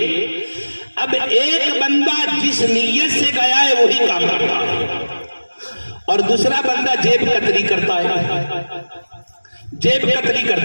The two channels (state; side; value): inverted; both; correlation -1.00